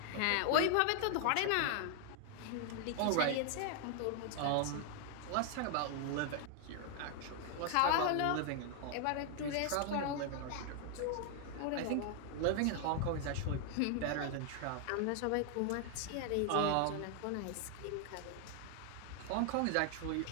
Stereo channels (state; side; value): different; both; correlation 0.00